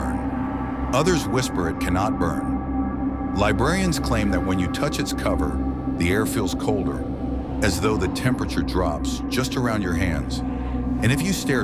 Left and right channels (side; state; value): both; identical; correlation 1.00